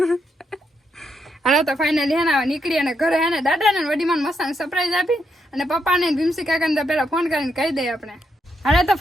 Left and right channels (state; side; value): normal; both; correlation 0.80